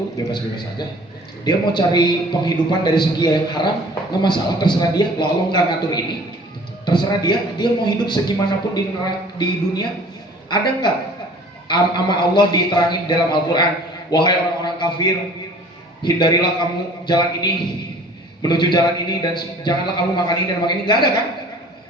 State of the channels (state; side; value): normal; both; correlation 0.49